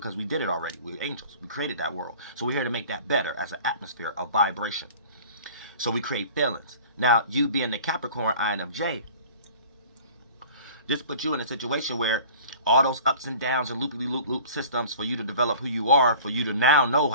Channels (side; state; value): both; inverted; correlation -0.43